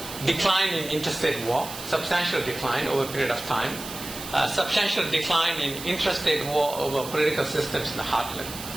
decline in interstate war, substantial decline over a period of time, substantial decline in intrastate war over political systems in the heartland,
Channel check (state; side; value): noise; right; hiss, 11 dB below the sound